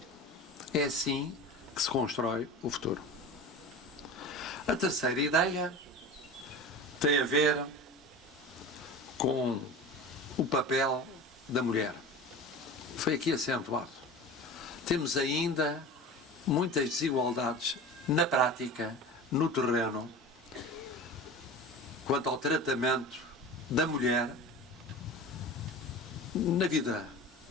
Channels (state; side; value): normal; both; correlation 0.33